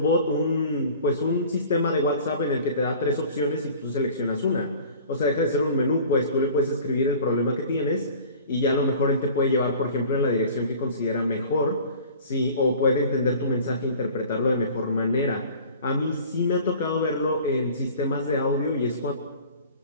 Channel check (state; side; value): inverted; both; correlation -0.45